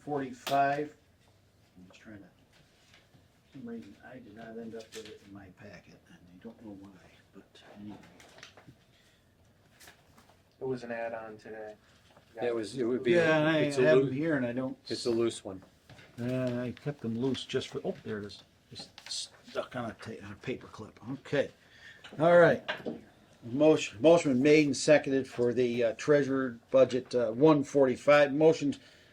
I'm just trying to, for some reason, I did not end up with it in my packet, and I don't know why, but anyway. It was an add-on today. It would be. Yeah, and I it's a have loo- them here, and I don't. It's a loose one. I kept them loose just for. Oh, there it is. Just stuck on a paper clip. Okay. All right. Motion been made and seconded for the treasurer budget 145. Motion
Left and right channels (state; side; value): identical; both; correlation 1.00